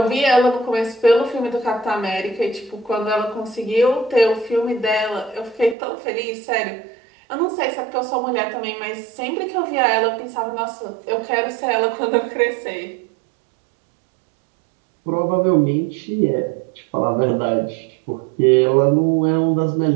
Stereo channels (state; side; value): drops out; left; at 5.8 s